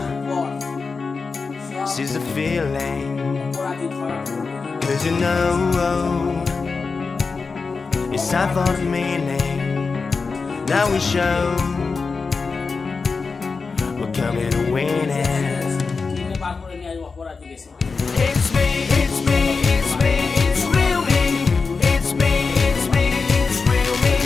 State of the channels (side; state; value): right; quieter; 4.6 dB